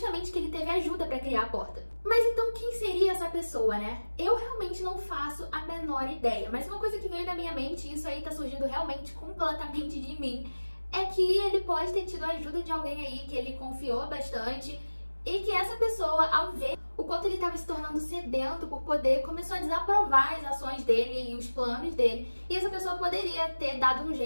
que ele teve ajuda para criar a porta. Mas então quem seria essa pessoa, né? Eu realmente não faço a menor ideia, mas uma coisa que veio na minha mente, e isso aí tá surgindo realmente completamente de mim, é que ele pode ter tido a ajuda de alguém aí que ele confiou bastante e que essa pessoa, ao ver o quanto ele estava se tornando sedento por poder, começou a desaprovar as ações dele e os planos dele. E essa pessoa poderia ter dado um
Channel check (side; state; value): both; inverted; correlation -1.00